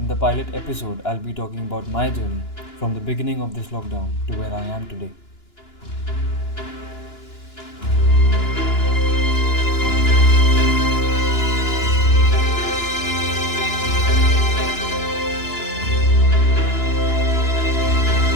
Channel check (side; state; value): right; late; 2.9 ms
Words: the pilot episode, I'll be talking about my journey from the beginning of this lockdown to where I am today.